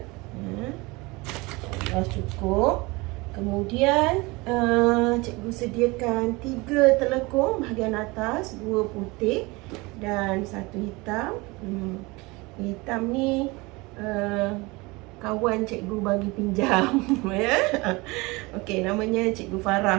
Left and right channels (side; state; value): left; quieter; 24.2 dB